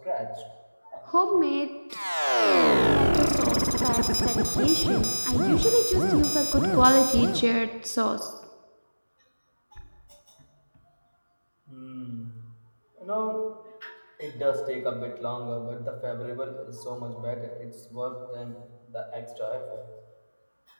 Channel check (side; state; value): both; inverted; correlation -1.00